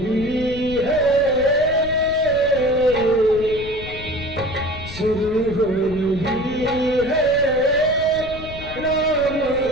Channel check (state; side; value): noise; left; rumble, 12 dB below the sound